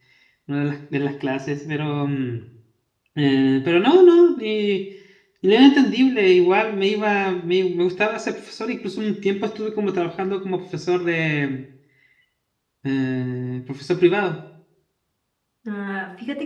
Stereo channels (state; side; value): identical; both; correlation 1.00